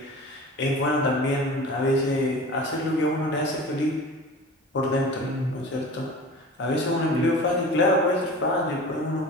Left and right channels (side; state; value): both; normal; correlation 0.38